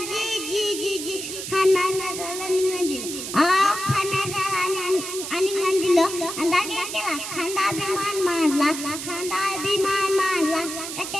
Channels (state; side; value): noise; right; hiss, 7 dB below the sound